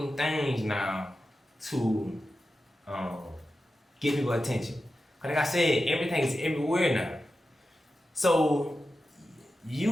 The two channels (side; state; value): both; normal; correlation 0.91